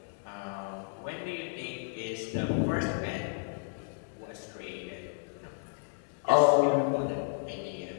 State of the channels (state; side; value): silent; right; 56 dB below the other